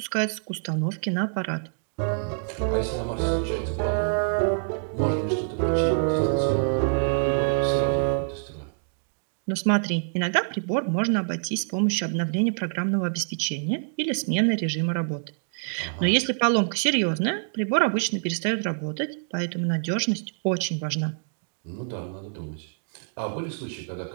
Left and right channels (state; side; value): silent; left; digital silence